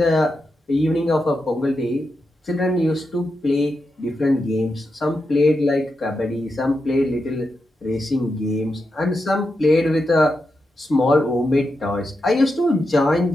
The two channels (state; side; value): normal; both; correlation 0.87